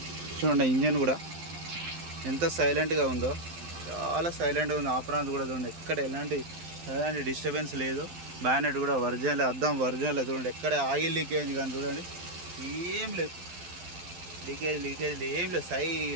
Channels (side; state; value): left; late; 12 ms